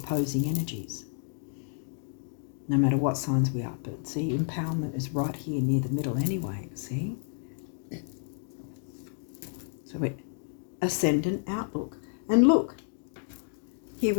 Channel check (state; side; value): silent; right; 58 dB below the other